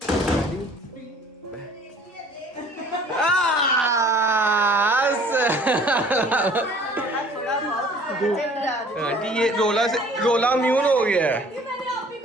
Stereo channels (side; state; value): both; normal; correlation 0.53